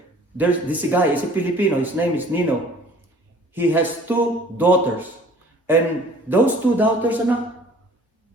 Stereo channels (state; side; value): normal; both; correlation 0.52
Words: There's this guy, he's a Filipino. His name is Nino. He has two daughters. And those two daughters